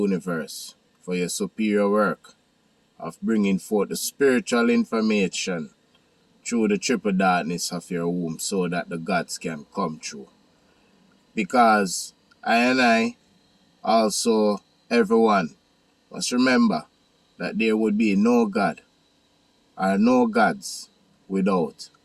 for your superior work of bringing forth the spiritual information through the triple darkness of your womb so that the gods can come true. Because I and I, also everyone, must remember that there would be no God or no gods without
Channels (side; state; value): both; identical; correlation 1.00